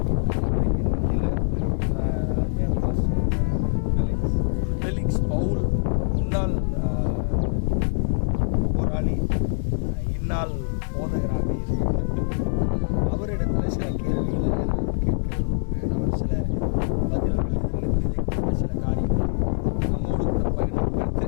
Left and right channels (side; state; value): right; silent; digital silence